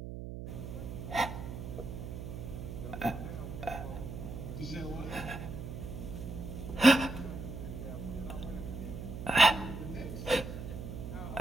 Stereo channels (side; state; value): right; noise; hum, 7 dB below the sound